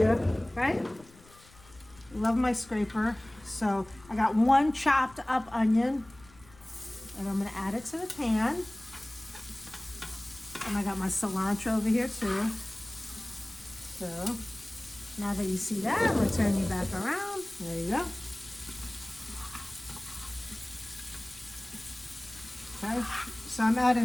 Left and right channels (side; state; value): left; noise; rumble, 24 dB below the sound